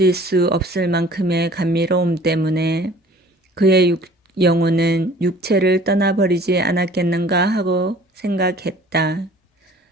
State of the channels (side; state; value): both; normal; correlation 0.50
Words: 수 없을 만큼의 감미로움 때문에 그의 영혼은 육체를 떠나버리지 않았겠는가 하고 생각했다.